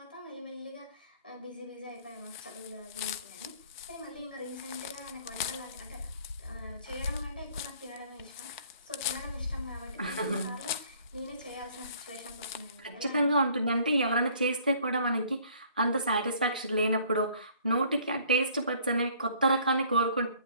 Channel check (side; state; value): both; inverted; correlation -0.57